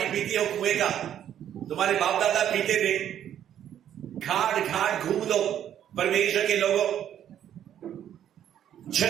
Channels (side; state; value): left; quieter; 10.3 dB